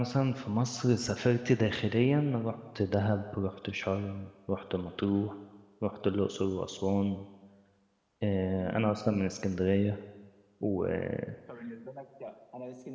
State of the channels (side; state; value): both; identical; correlation 1.00